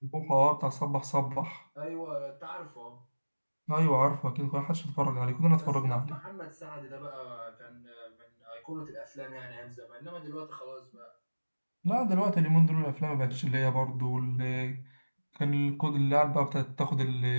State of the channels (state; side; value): inverted; both; correlation -1.00